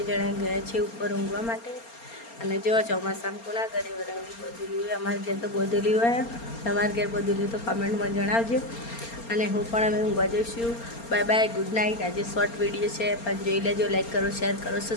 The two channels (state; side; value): late; right; 4.3 ms